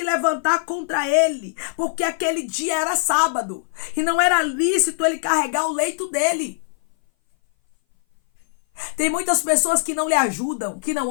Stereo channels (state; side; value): silent; right; 59 dB below the other